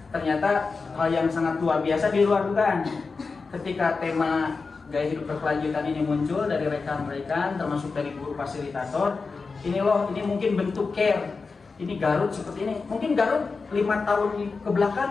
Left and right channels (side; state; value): right; quieter; 4.4 dB